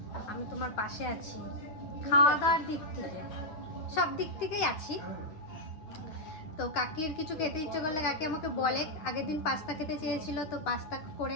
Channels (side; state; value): right; late; 9.3 ms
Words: আমি তোমার পাশে আছি। খাওয়া দাওয়ার দিক থেকে সব দিক থেকেই আছি। তো কাকির কিছু খেতে ইচ্ছে করলে কাকি আমাকে বলে। আগের দিন পাস্তা খেতে চেয়েছিল, তো পাস্তা করে